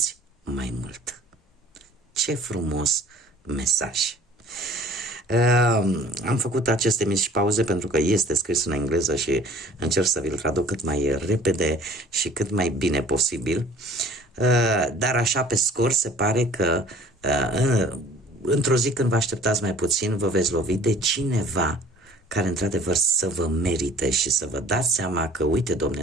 mai mult. Ce frumos mesaj! Am făcut aceste mici pauze pentru că este scris în engleză și încerc să vi-l traduc cât mai repede și cât mai bine posibil. Dar așa pe scurt se pare că într-o zi când vă așteptați mai puțin vă veți lovi de cineva care într-adevăr să vă merite și să vă dați seama că, uite, domne,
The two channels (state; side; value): normal; both; correlation 0.51